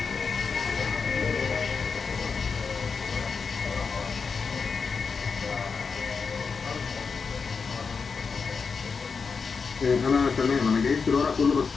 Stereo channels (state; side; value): quieter; right; 5.3 dB